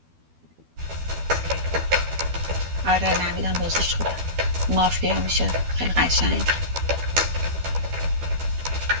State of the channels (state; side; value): late; left; 12 ms